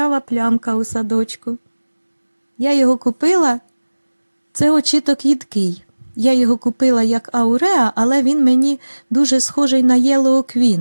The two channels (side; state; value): both; inverted; correlation -1.00